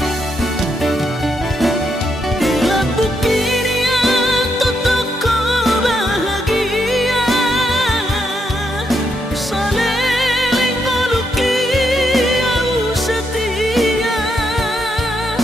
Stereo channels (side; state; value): both; normal; correlation 0.79